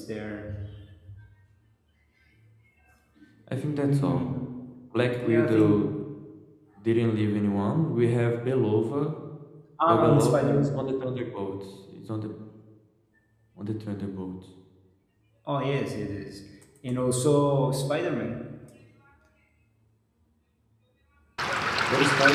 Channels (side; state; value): both; identical; correlation 1.00